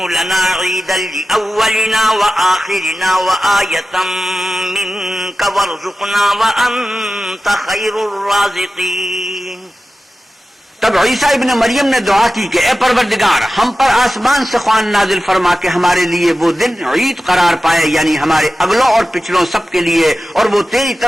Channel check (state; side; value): normal; both; correlation 0.94